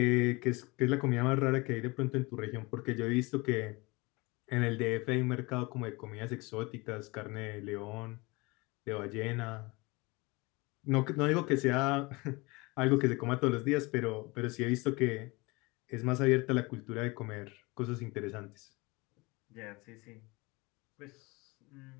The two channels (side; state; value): right; quieter; 24.9 dB